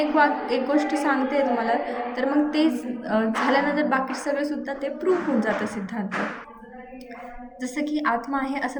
गोष्ट सांगते तुम्हाला तर मग ते झाल्यानंतर बाकी सगळेसुद्धा ते प्रूव्ह होऊन जातं सिद्धांत. जसं की आत्मा आहे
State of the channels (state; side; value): identical; both; correlation 1.00